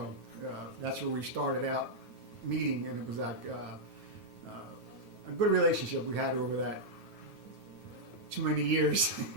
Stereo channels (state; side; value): late; left; 9.0 ms